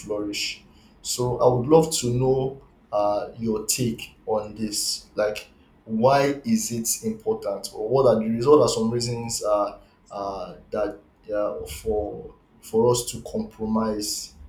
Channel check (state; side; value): identical; both; correlation 1.00